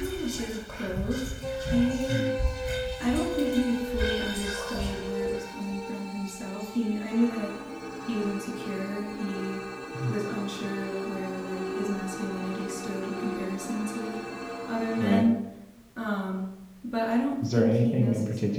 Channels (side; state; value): both; identical; correlation 1.00